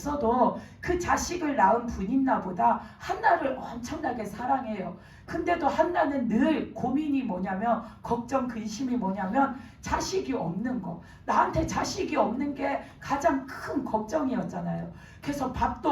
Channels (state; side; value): identical; both; correlation 1.00